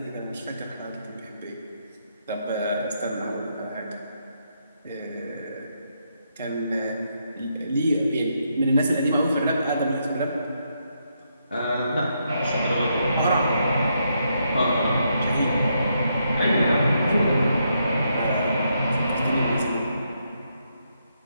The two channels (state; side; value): inverted; both; correlation -0.78